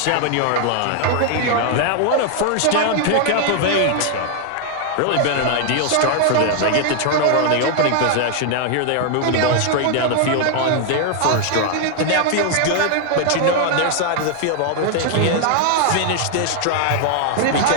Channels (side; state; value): both; different; correlation 0.00